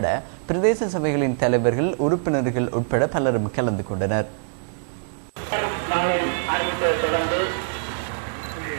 பிரதேச சபைகளின் தலைவர்கள், உறுப்பினர்கள் உட்பட பலரும் கலந்து கொண்டனர்.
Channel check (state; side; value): silent; left; digital silence